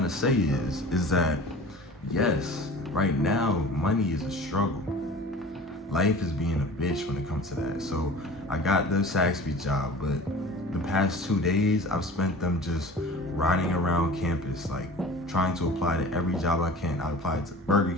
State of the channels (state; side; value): normal; both; correlation 0.41